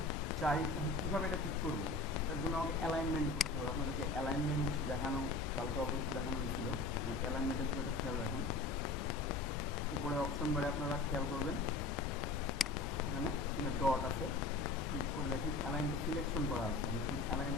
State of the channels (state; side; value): quieter; right; 3.6 dB